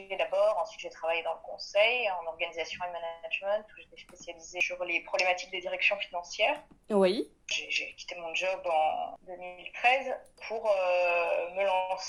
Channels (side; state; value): both; identical; correlation 1.00